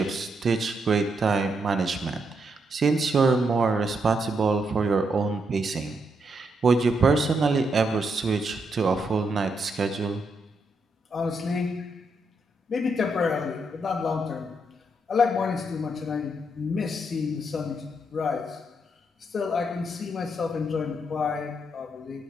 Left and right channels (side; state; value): both; normal; correlation 0.79